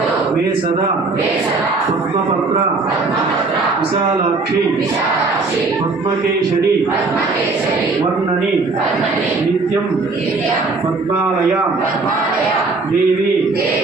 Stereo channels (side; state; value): left; quieter; 3.8 dB